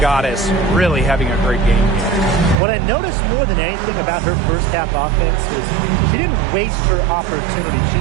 Goddess really having a great game here. What I noticed more than anything about her first half offense is she didn't waste her opportunity. She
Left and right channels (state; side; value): drops out; left; at 2.6 s